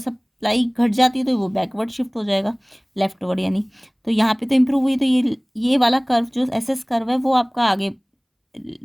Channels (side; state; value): both; identical; correlation 1.00